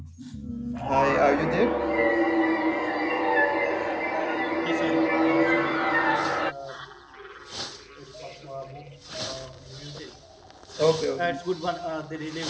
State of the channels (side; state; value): both; identical; correlation 1.00